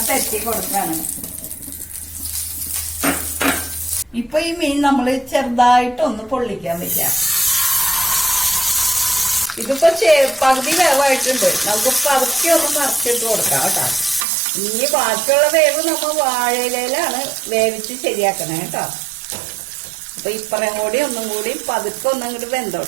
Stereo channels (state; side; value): drops out; left; at 14.2 s